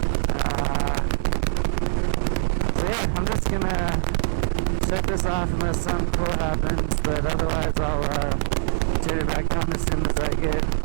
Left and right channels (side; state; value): left; silent; 63 dB below the other